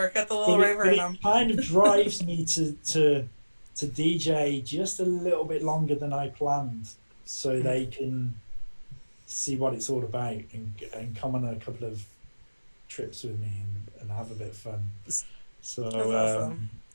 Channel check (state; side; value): inverted; both; correlation -1.00